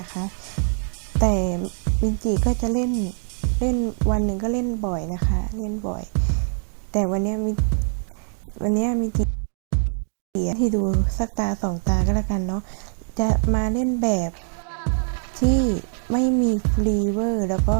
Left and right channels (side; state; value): left; silent; 63 dB below the other